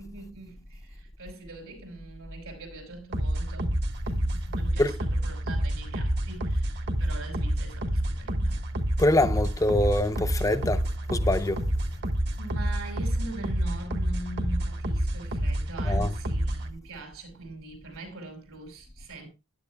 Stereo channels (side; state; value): both; normal; correlation 0.84